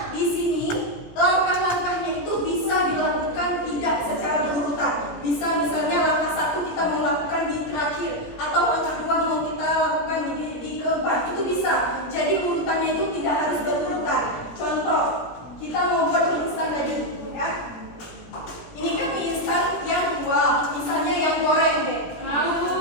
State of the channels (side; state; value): right; late; 17 ms